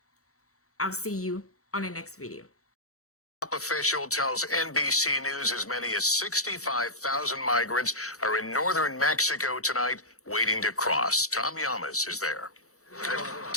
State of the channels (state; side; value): late; right; 0.65 ms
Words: I'll see you on the next video. Top official tells NBC News as many as 65,000 migrants are in northern Mexico tonight waiting to cross. Tom Llamas is there.